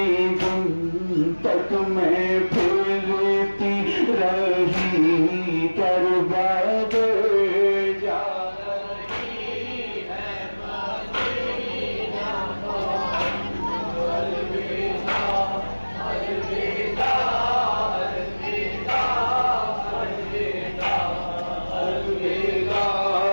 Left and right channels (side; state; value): both; inverted; correlation -1.00